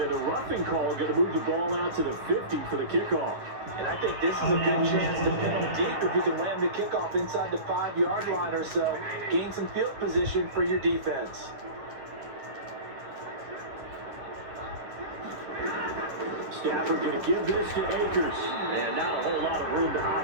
and the roughing call going to move the ball out to the 50 for the kickoff. And I think this is a good chance to pin them deep if you can land the kickoff inside the 5-yard line or so. Gain some field position for your defense. Stafford going to give this to Akers. And not a whole lot of room to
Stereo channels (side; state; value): left; late; 9.9 ms